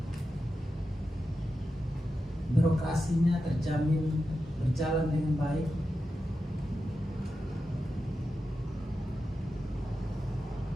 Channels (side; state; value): both; normal; correlation 0.90